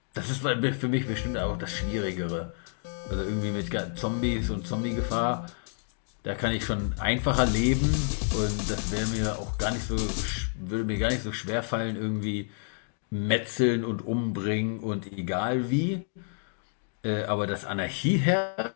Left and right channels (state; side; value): silent; right; digital silence